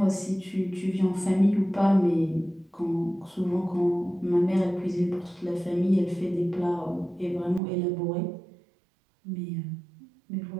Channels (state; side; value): drops out; left; at 7.6 s